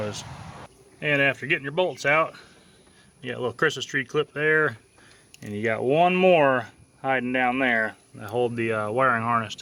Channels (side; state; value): both; identical; correlation 1.00